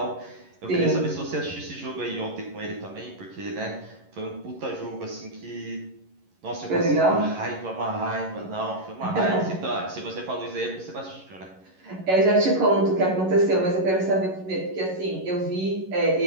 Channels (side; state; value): left; late; 11 ms